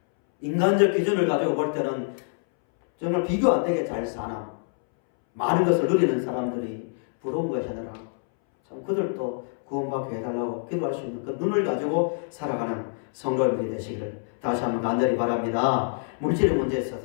인간적 기준을 가지고 볼 때는 정말 비교 안 되게 잘 사나 많은 것을 누리는 사람들이 부러운 것이 아니라 참 그들도 구원받게 해달라고 기도할 수 있는 그 눈을 가지고 살아가는 성도들이 되시기를 다시 한번 간절히 바랍니다. 물질의 문제에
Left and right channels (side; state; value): right; silent; 61 dB below the other